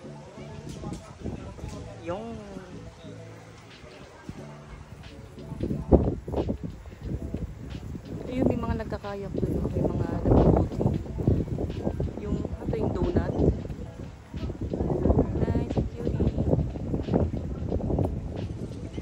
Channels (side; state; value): both; identical; correlation 1.00